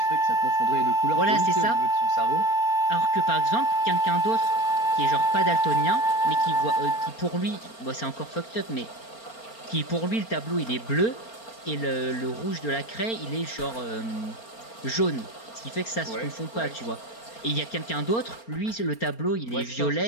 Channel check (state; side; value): late; right; 4.4 ms